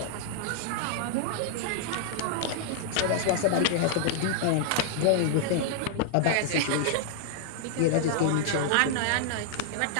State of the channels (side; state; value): both; different; correlation -0.01